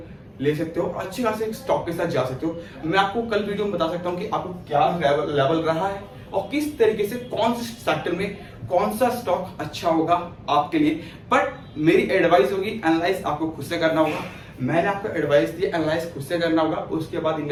ले सकते हो, अच्छे खासे स्टॉक के साथ जा सकते हो। मैं आपको कल वीडियो में बता सकता हूँ कि आपको क्या लेवल रहा है और किस तरीके से कौन से सेक्टर में कौन सा स्टॉक अच्छा होगा आपके लिए। बट मेरी एडवाइस होगी, एनालाइज आपको खुद से करना होगा। मैंने आपको एडवाइस दी, एनालाइज खुद से करना होगा, उसके बाद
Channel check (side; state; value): both; identical; correlation 1.00